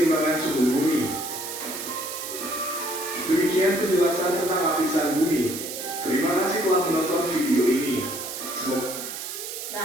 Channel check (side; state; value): right; noise; hiss, 7 dB below the sound